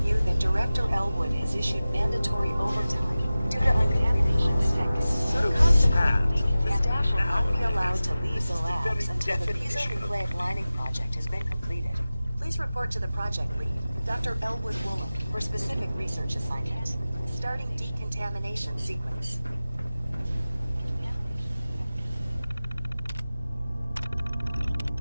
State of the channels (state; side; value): inverted; both; correlation -0.96